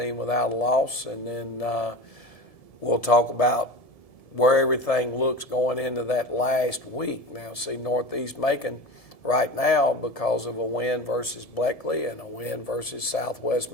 without a loss. And then we'll talk about where everything looks going into that last week. Now, see, Northeast Macon right now, because of a win versus Bleckley and a win versus Southwest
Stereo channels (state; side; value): late; right; 1.7 ms